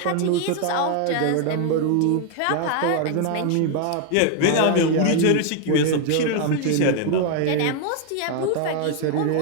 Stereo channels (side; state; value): both; different; correlation 0.00